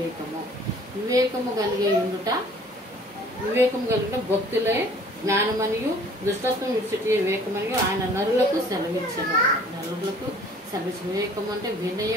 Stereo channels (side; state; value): both; normal; correlation 0.53